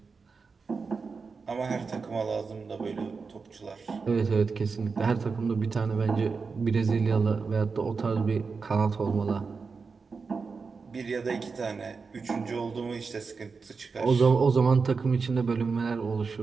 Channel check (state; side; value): quieter; left; 4.9 dB